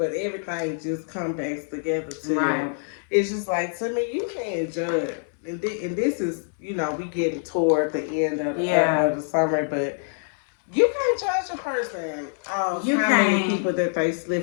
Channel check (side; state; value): right; silent; digital silence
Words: everything just comes back together to right. It's just like, to me, you can't judge, and this is we getting toward the end of the summer, but you can't judge a person you how can't. many people that they